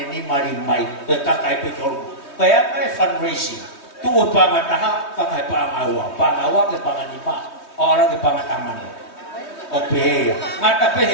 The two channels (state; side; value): late; right; 3.2 ms